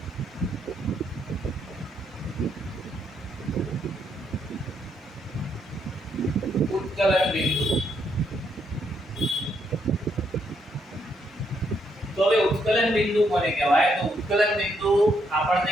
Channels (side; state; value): both; normal; correlation 0.75